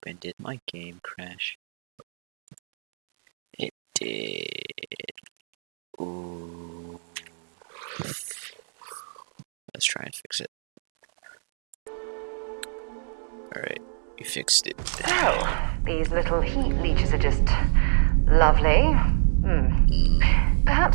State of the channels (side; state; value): left; silent; 61 dB below the other